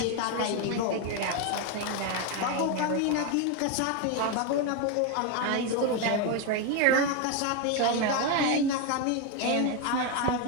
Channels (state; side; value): different; both; correlation 0.02